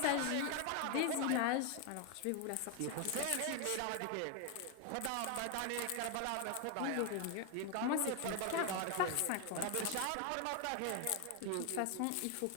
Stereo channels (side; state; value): both; different; correlation 0.01